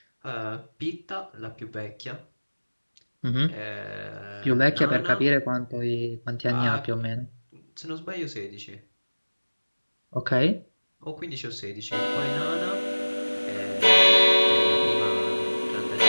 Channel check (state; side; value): inverted; both; correlation -1.00